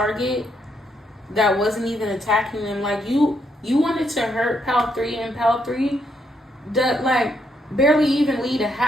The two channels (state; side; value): normal; both; correlation 0.77